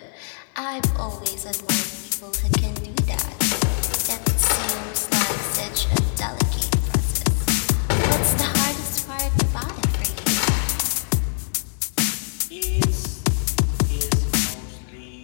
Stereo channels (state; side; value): silent; right; digital silence